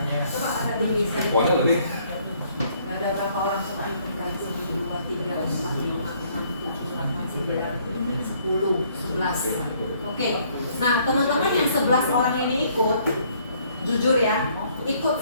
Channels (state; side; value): inverted; both; correlation -0.64